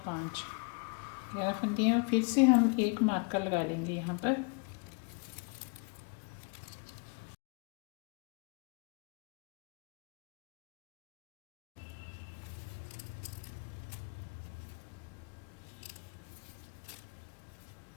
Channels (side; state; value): right; quieter; 35.0 dB